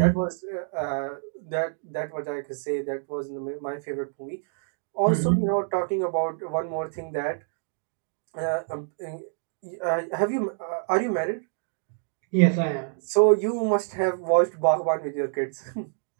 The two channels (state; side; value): silent; left; digital silence